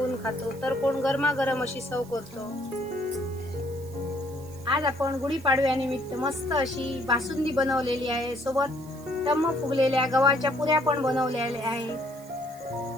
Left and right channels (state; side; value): noise; right; hiss, 22 dB below the sound